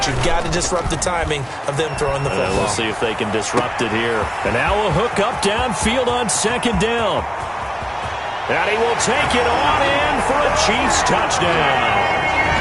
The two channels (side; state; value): both; identical; correlation 1.00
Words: you've got to disrupt the timing of them throwing the football. We'll see if they can disrupt it here. And now a hook up downfield on second down. And he will take it on in for a Chiefs touchdown.